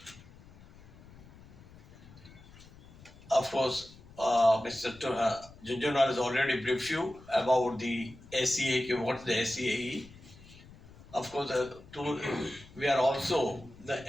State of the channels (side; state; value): left; noise; rumble, 21 dB below the sound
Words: Of course, Mr. Junjuwala has already briefed you about the SEA. What's the SEA? Of course, we are also the